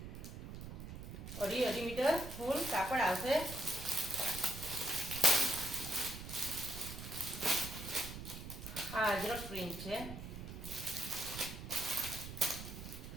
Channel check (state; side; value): noise; right; rumble, 9 dB below the sound